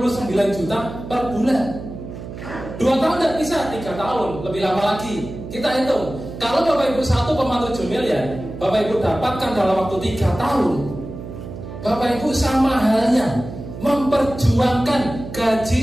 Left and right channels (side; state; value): right; noise; hum, 11 dB below the sound